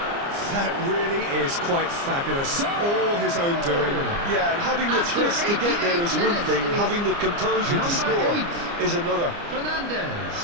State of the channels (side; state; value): left; late; 29 ms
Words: That really is quite fabulous. All his own doing. Yeah, and having the thrust to get there is one thing, having the composure to score is another. Fernandez.